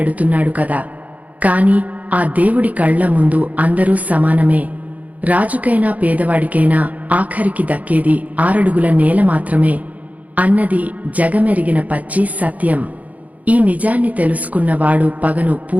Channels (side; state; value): left; late; 0.073 ms